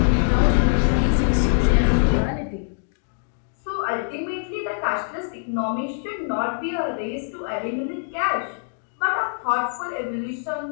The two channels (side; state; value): right; silent; digital silence